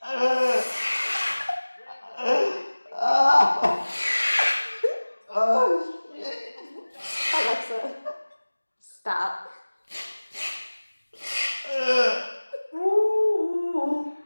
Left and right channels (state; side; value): inverted; both; correlation -1.00